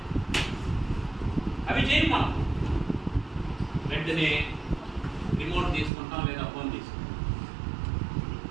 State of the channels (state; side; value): drops out; left; at 5.9 s